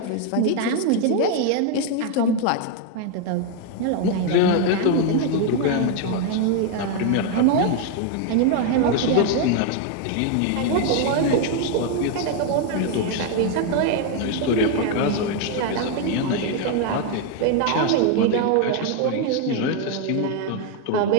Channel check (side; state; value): both; different; correlation 0.01